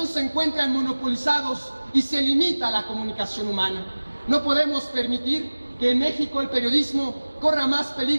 se encuentran monopolizados y se limita la comunicación humana. No podemos permitir que en México el periodismo corra más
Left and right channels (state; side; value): inverted; both; correlation -1.00